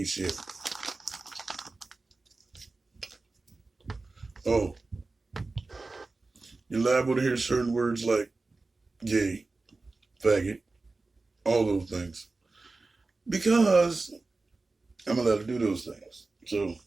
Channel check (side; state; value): left; quieter; 3.5 dB